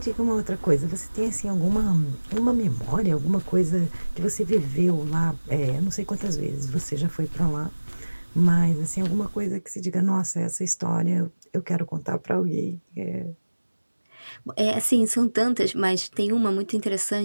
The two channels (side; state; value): both; inverted; correlation -1.00